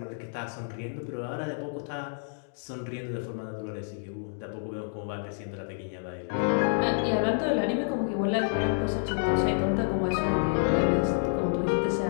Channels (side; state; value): right; silent; digital silence